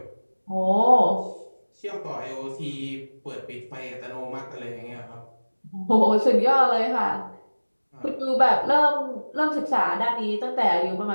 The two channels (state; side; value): inverted; both; correlation -1.00